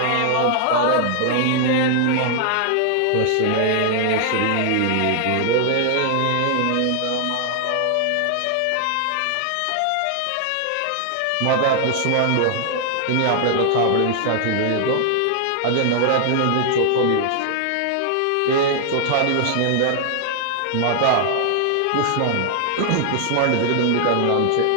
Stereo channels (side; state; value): both; different; correlation 0.00